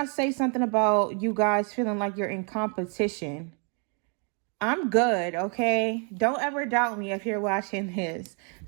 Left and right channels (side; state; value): left; quieter; 38.6 dB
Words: say something about you guys feeling like you're in competition? I'm good, okay? Don't ever doubt me if you're watching this.